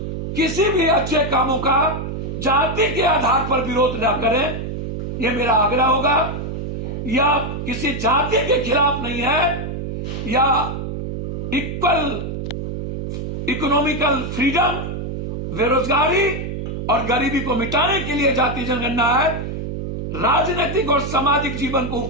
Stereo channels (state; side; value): noise; right; hum, 5 dB below the sound